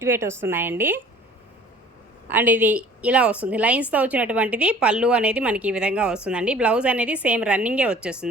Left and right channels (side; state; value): both; normal; correlation 0.50